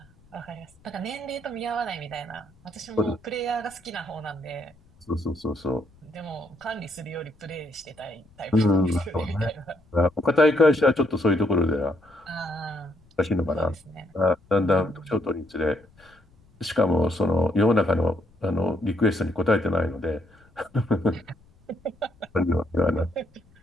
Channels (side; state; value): left; noise; rumble, 29 dB below the sound